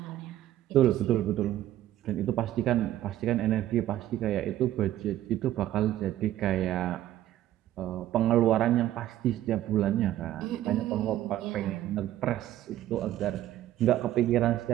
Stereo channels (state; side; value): quieter; left; 13.4 dB